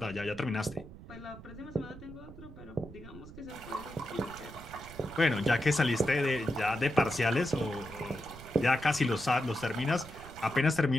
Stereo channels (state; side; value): noise; right; rumble, 16 dB below the sound